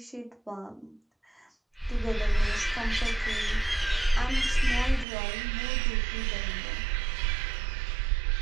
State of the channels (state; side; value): drops out; left; at 5.1 s